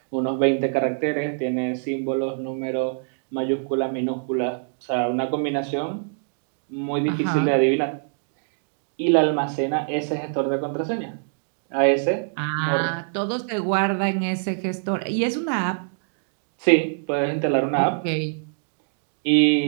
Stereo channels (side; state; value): left; silent; digital silence